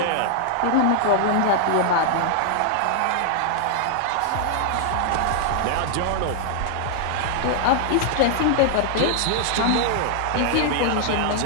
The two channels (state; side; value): different; both; correlation -0.01